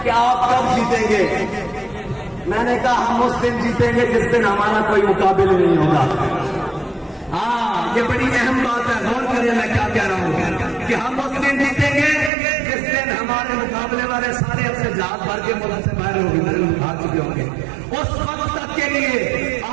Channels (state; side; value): drops out; left; at 12.3 s